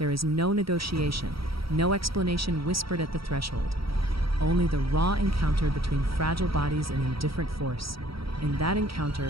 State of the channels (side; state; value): left; late; 0.75 ms